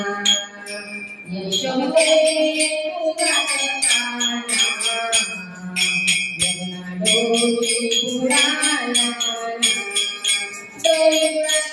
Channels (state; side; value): identical; both; correlation 1.00